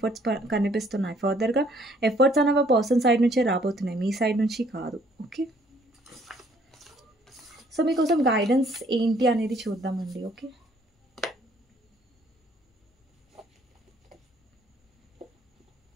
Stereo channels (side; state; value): both; normal; correlation 0.63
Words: కనిపిస్తున్నాయి. ఫర్దర్‌గా ఎఫర్ట్స్ అనేవి పర్సన్ సైడ్ నుంచే రాబోతున్నాయి. మీ సైడ్ నుంచి కాదు. ఓకే. సో, మీకోసం గైడెన్స్ ఏంటి అనేది చూద్దామండి. ఓకే.